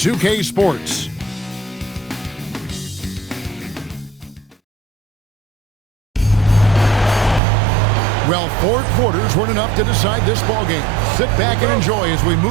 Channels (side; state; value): left; drops out; at 7.4 s